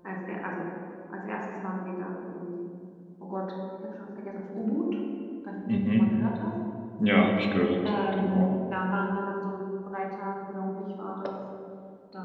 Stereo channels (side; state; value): both; identical; correlation 1.00